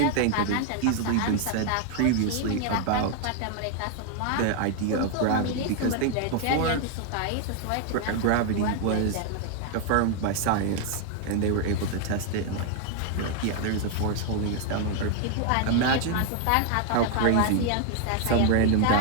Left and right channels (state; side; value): different; both; correlation 0.00